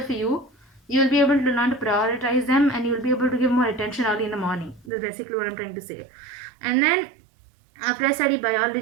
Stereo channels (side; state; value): left; drops out; at 4.9 s